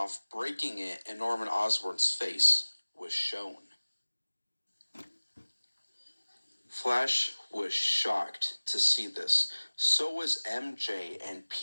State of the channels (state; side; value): inverted; both; correlation -1.00